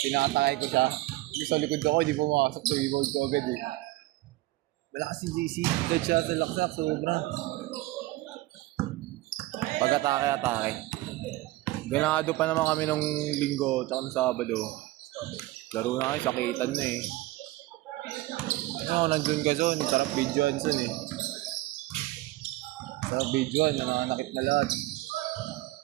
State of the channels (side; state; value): left; quieter; 18.3 dB